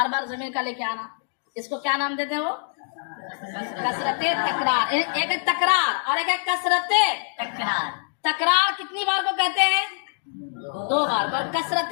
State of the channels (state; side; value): silent; right; digital silence